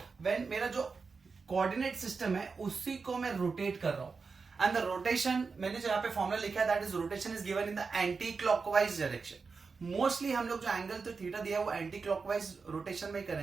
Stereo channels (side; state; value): left; quieter; 4.8 dB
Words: when मेरा जो coordinate system है उसी को मैं rotate कर रहा हूं and the rotation मैंने जो यहाँ पे फॉर्मूला लिखा है that is rotation is given in the anti clockwise direction. Mostly हम लोग जो एंगल तो थीटा दिया है वो एंटी क्लॉकवाइज रोटेशन में